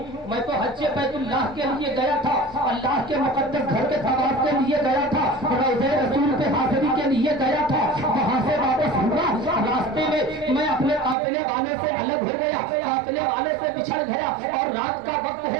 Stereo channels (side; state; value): left; drops out; at 11.2 s